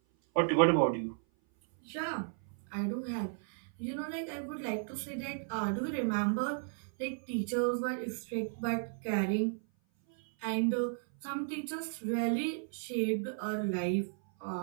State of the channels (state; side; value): silent; left; 55 dB below the other